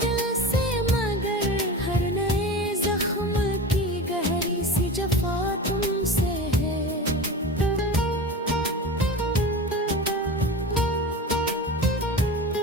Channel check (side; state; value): both; normal; correlation 0.30